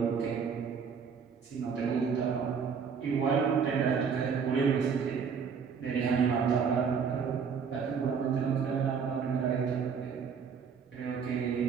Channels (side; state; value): left; quieter; 6.3 dB